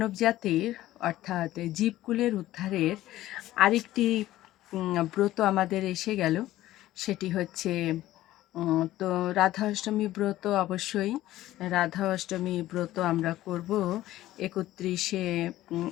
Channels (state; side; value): quieter; right; 15.0 dB